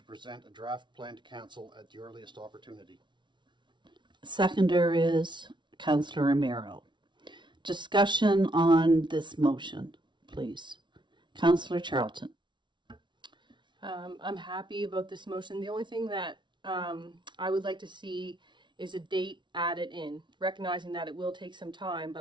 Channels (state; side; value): late; left; 0.23 ms